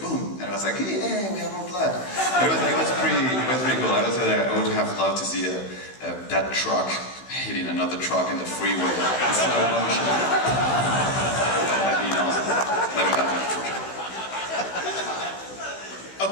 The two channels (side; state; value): right; late; 16 ms